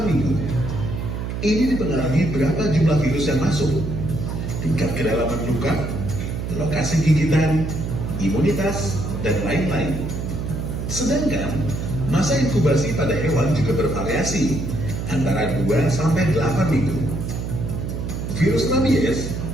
minggu. Ini dipengaruhi berapa jumlah virus yang masuk, tingkat kedalaman luka, lokasi gigitan, imunitas, dan lain-lain. Sedangkan masa inkubasi pada hewan juga bervariasi antara 2 sampai 8 minggu. Virus rabies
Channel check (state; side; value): noise; right; hum, 4 dB below the sound